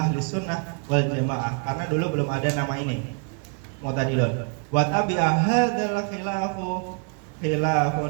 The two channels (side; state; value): left; quieter; 38.1 dB